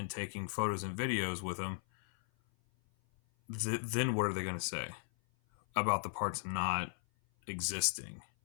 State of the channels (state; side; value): silent; right; 53 dB below the other